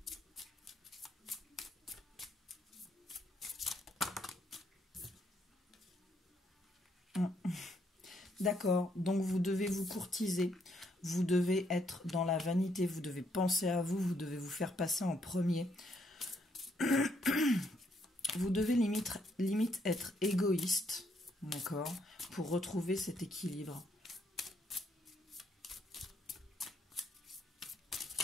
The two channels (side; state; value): both; normal; correlation 0.72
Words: D'accord, donc vous devez vous courtiser, vous devez être dans la vanité, vous devez penser à vous, vous devez vous faire passer en premier. Vous devez limite être égoïste, d'accord, pour retrouver cet équilibre.